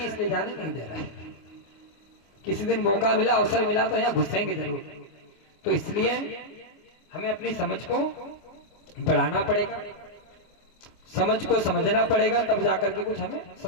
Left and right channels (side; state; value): right; late; 25 ms